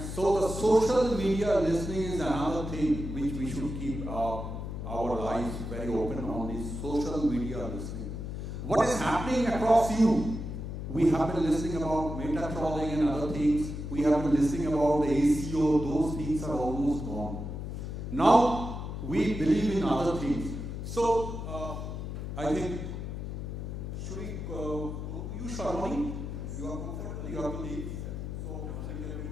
so the social media listening is another thing which we should keep our eyes very open on, is social media listening. What is happening across you? We have been listening about meta trolling and other things. We have been listening about the ACO. Those things are almost gone. Now we believe in other things. So I think, should we, you Sharmani, you are comfortable, you have to leave. So I think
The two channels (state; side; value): noise; left; hum, 6 dB below the sound